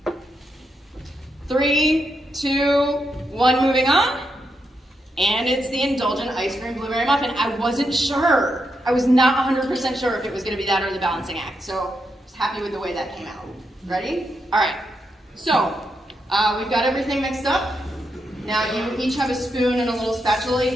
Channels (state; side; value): normal; both; correlation 0.83